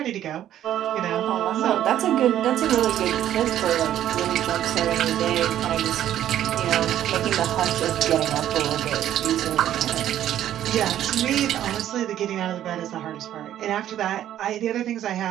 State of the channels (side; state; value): left; quieter; 11.6 dB